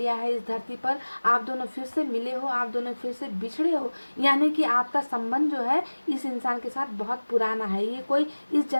है इस धरती पर, आप दोनों फिर से मिले हो, आप दोनों फिर से बिछड़े हो। यानी कि आपका संबंध जो है इस इंसान के साथ बहुत पुराना है, ये कोई इस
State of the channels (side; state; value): both; inverted; correlation -1.00